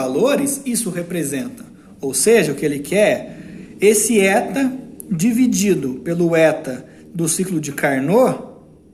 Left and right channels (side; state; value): both; identical; correlation 1.00